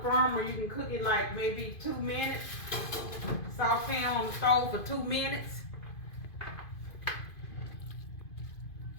firmer, you can cook it like maybe 2 minutes. Saute on the stove for 2 minutes.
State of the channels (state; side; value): late; right; 2.5 ms